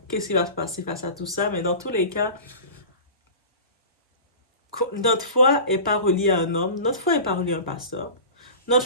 qu'est-ce qui va se passer face à tout ça. Mais dans tous les cas, notre foi n'est pas reliée à un homme. Notre foi n'est pas reliée à un pasteur.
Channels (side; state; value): both; inverted; correlation -0.35